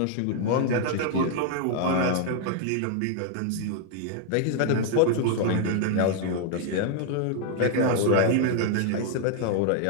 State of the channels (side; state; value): both; different; correlation 0.00